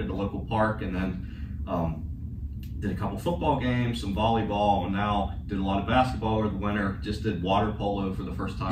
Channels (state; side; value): identical; both; correlation 1.00